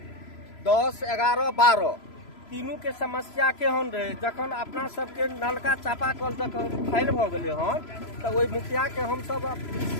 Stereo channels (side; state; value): right; late; 3.0 ms